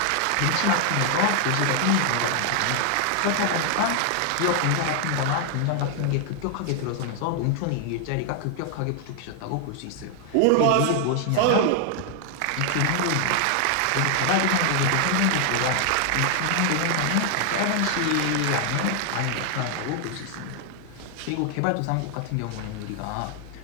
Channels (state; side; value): different; both; correlation 0.00